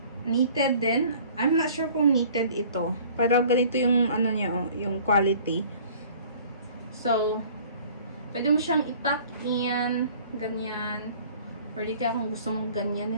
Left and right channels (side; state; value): both; inverted; correlation -0.50